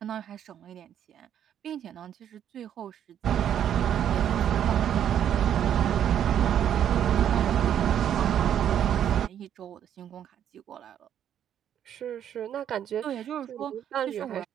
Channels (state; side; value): quieter; left; 9.8 dB